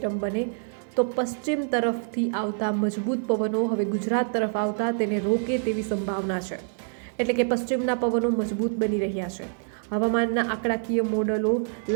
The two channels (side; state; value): left; silent; digital silence